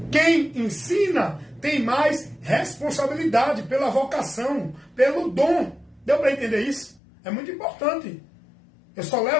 Quem ensina tem mais responsabilidade pela vocação, pelo dom. Deu para entender isso? É muito importante. Eu só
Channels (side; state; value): right; drops out; at 7.0 s